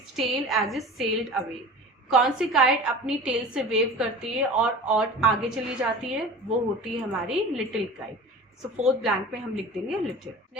tail as it sailed away. कौन सी काइट अपनी टेल से वेव करती है और आगे चली जाती है, वो होती है हमारी little kite. So fourth blank में हम लिख देंगे little.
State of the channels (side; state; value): both; normal; correlation 0.37